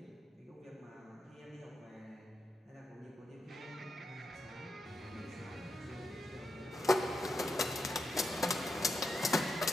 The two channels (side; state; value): both; normal; correlation 0.85